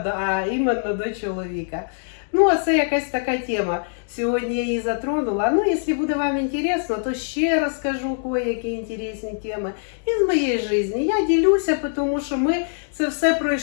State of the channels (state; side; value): silent; right; digital silence